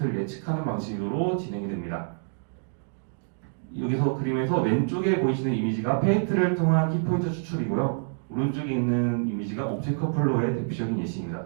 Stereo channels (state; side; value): silent; left; digital silence